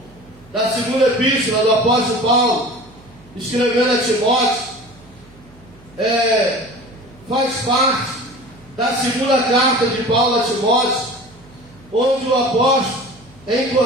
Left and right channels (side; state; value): right; noise; hum, 26 dB below the sound